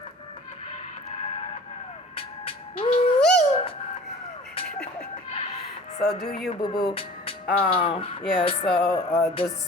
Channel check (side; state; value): both; normal; correlation 0.44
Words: So do you, boo-boo. The